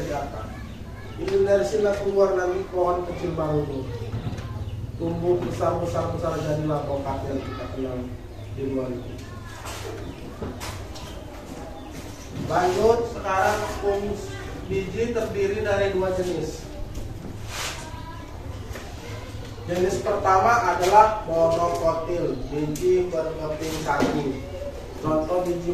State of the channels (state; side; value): identical; both; correlation 1.00